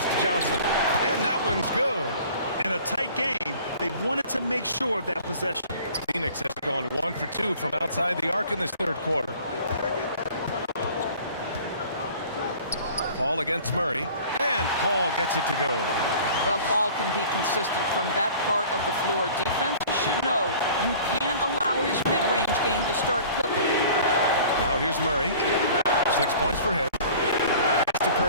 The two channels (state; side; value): inverted; both; correlation -0.47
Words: to Johnson, and that one's good. In a tight game, they wanted to make sure of that possession. Phoenix has gone 1 for 2 from outside the arc in this third quarter. Paul against Murray, and Paul gets it to go. Well, Paul can be consistent from that part of the floor. Defenses should know you can't allow his mid-range game to start cooking. Now here's Murray. 6 points for him. Pass to